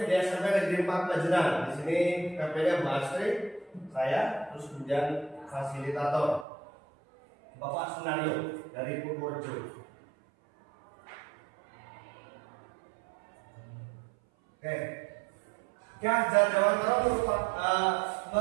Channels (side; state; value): left; drops out; at 6.5 s